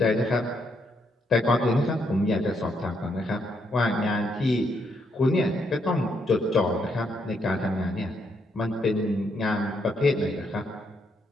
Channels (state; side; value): normal; both; correlation 0.76